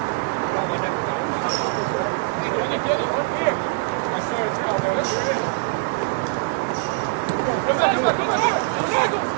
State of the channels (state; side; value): quieter; left; 26.8 dB